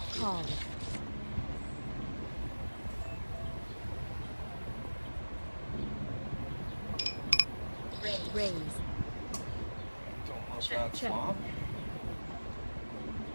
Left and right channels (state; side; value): inverted; both; correlation -1.00